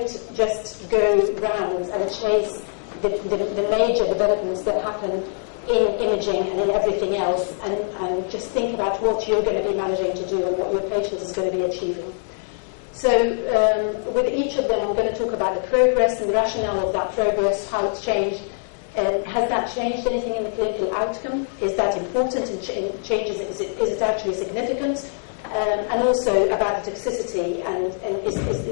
just go round and chase the major developments that happen in imaging and in everything else, and just think about what you're going to be managing to do and what your patient is going to be achieving. So with each of them, I'm going to talk about the progress and the rationale of that progress, how it's changed. Has that changed anything in the clinical outcome? Is that important in changes? Is it actually significant? And also about the toxicity, and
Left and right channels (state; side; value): silent; right; digital silence